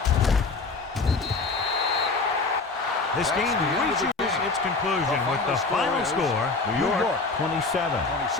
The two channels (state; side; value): quieter; right; 3.9 dB